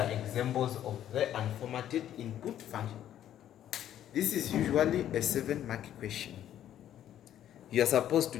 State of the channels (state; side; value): quieter; right; 11.2 dB